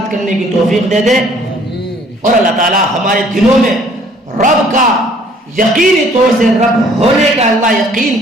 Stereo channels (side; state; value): both; normal; correlation 0.59